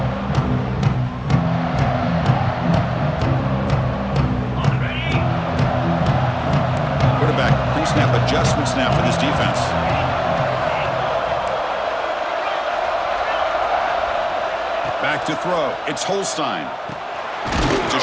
Quarterback pre-snap adjustment snap for this defense. Back to throw. It's Holstein. It's a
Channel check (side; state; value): both; identical; correlation 1.00